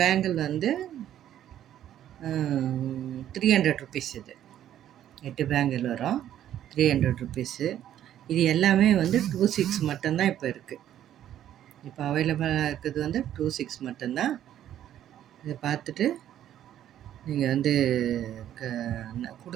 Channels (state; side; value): quieter; left; 11.3 dB